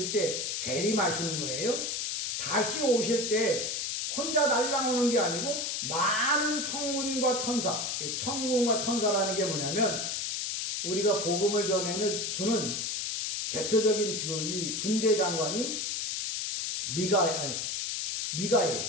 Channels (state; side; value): noise; left; hiss, 2 dB below the sound